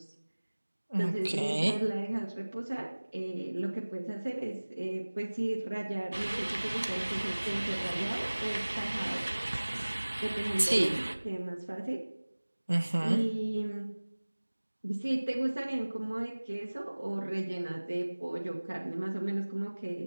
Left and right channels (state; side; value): inverted; both; correlation -1.00